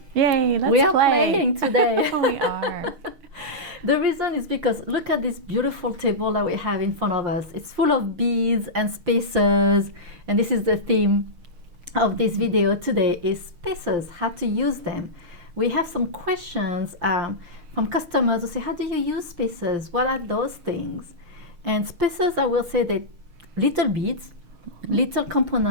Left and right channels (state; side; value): late; left; 6.4 ms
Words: Yay, let's play. We are playing today. We are. The reason is because look at this beautiful table that we have in front of us. It's full of beads and spacers, and this is the theme of this video today is spacers, how to use them. We have some questions from customers who say, how do you use spacers? What are those things? And spacers, I will say that little beads, little